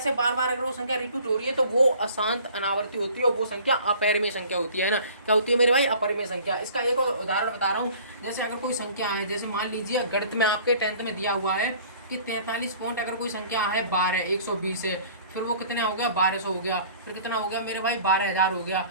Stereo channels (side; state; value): both; inverted; correlation -0.49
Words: बार अगर वो संख्या रिपीट हो रही है तो वो अशांत अनावर्ती होती है और वो संख्या अपरिमेय संख्या होती है ना। क्या होती है मेरे भाई, अपरिमेय संख्या। इसका एक और उदाहरण बता रहा हूँ, जैसे अगर कोई संख्या है, जैसे मान लीजिए गणित में आपके 10th में दिया हुआ है कि 43 पॉइंट अगर कोई संख्या है 12 120 है, फिर वो कितने हो गया 1200 हो गया, फिर कितना हो गया मेरे भाई 12000 हो गया,